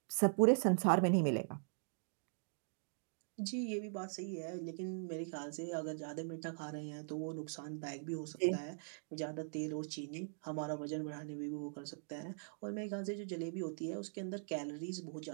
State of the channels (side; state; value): left; silent; digital silence